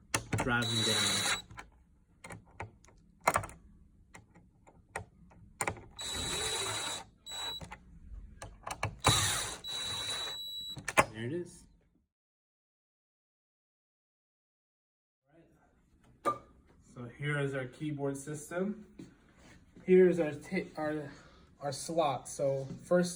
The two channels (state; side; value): identical; both; correlation 1.00